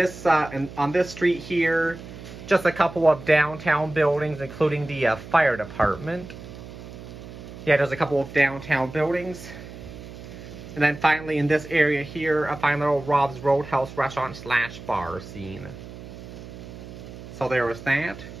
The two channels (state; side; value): noise; right; hum, 14 dB below the sound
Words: street here, just a couple of downtown buildings, including the fire department. Yeah, there's a couple of downtown buildings. And then finally in this area here, a fine little Rob's Roadhouse restaurant / bar scene. So there was that.